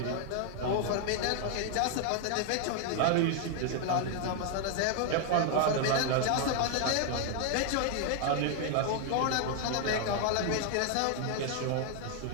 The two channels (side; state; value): both; different; correlation 0.00